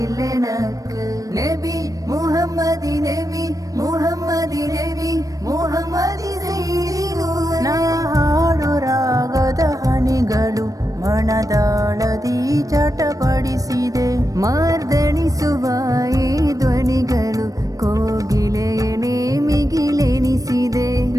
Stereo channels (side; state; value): left; late; 0.17 ms